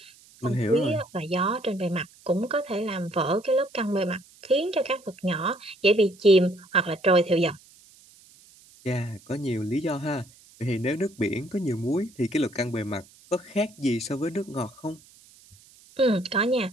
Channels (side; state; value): right; noise; hiss, 26 dB below the sound